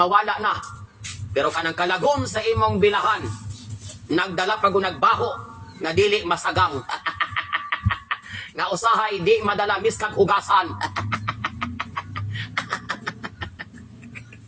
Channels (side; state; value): both; identical; correlation 1.00